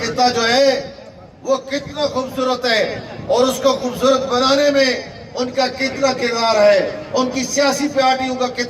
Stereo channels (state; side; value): identical; both; correlation 1.00